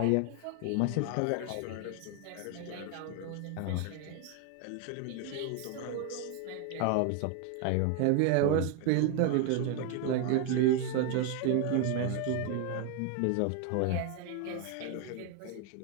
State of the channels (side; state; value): both; different; correlation 0.01